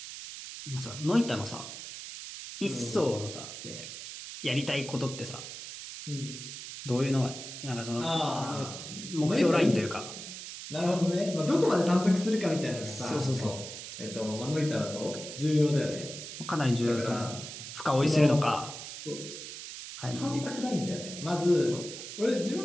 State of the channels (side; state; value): right; noise; hiss, 10 dB below the sound